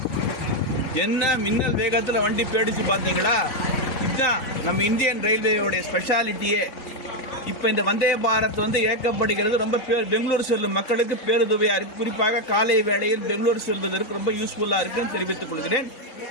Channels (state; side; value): late; right; 3.9 ms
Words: என்ன மின்னல் வேகத்தில் வண்டி போயிடுச்சு பார்த்தீங்களா? இதுதான் நம்ம இந்தியன் ரயில்வேயோடைய ஸ்பெஷாலிட்டியே. இப்போ இந்த வந்தே பாரத் இயக்கப்படுகிறது ரொம்ப பெங்களூர் செல்லும் மக்களுக்கு பேருதவியாக இருக்கு. குறிப்பாக காலை வேளையில் பெங்களூர் செல்வதற்கு ரொம்ப யூஸ்ஃபுல்லாக இருக்குன்னு தெரிவித்துக் கொள்கிறேன்.